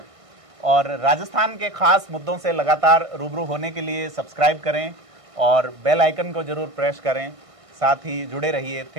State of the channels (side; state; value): left; late; 1.6 ms